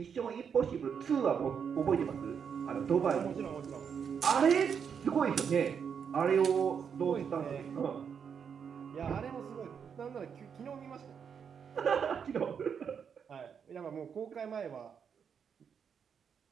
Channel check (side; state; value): left; quieter; 7.1 dB